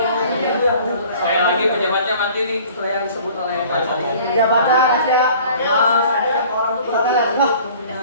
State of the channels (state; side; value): inverted; both; correlation -0.49